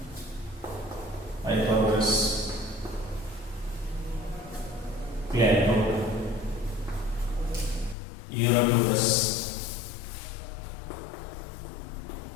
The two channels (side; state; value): right; drops out; at 8.0 s